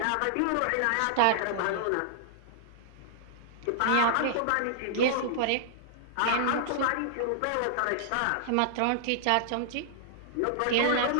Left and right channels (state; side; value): different; both; correlation -0.01